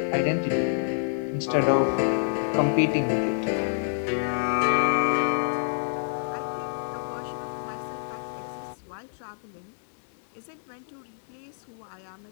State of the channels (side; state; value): right; silent; digital silence